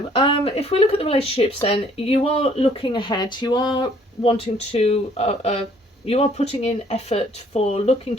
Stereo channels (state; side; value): normal; both; correlation 0.61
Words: if we look at the relationships, then you are looking ahead. You are wanting to, you are putting in effort for looking